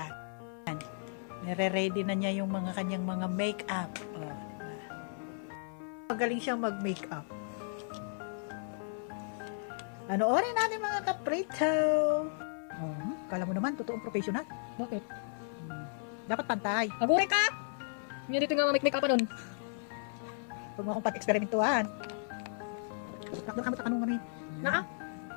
Nire-ready na niya yung mga kanyang mga make-up. Magaling siyang mag-make-up. Panoorin natin mga kaprito. Kala mo naman, totoong professional. Bakit? Dapat pantay. Agure ka! Hindi dito nga make-up pa nun. Huwag mo akong pat-eksperimentuhan. Takdo ka mo takanong kami. Naa?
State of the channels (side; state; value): right; silent; 55 dB below the other